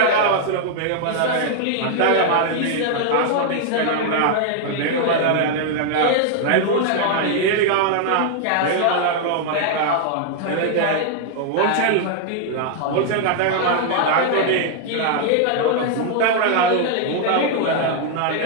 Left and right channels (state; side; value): different; both; correlation 0.00